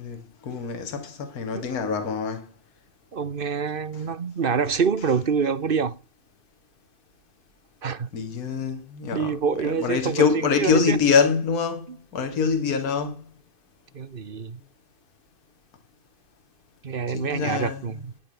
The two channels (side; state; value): left; late; 2.5 ms